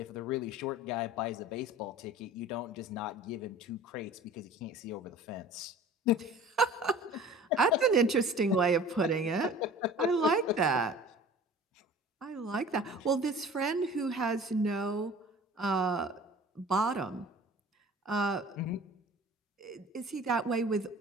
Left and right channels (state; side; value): normal; both; correlation 0.44